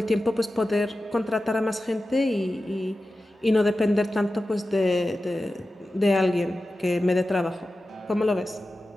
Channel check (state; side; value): normal; both; correlation 0.94